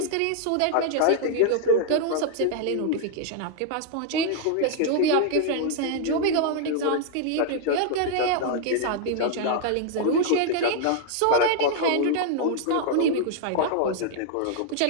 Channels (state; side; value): different; both; correlation 0.00